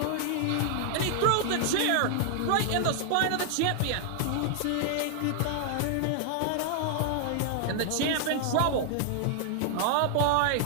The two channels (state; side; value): different; both; correlation 0.00